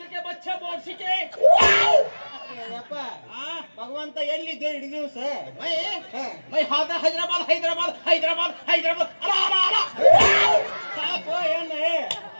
ಬಚ್ಚ ಬೋಡ್ಸಿಕೆ ಭಗವಂತ ಎಲ್ಲಿದ್ದೆ ಇಡೀ ದಿವಸ ಮೈ ಹಾದ ಹೈದರಾಬಾದ್ ಹೈದರಾಬಾದ್ ಹೈದರಾಬಾದ್ ಹೈದರಾಬಾದ್ ಅಲ ಅಲ ಅಲ ಸಾಕು ಏನೇ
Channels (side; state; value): both; inverted; correlation -1.00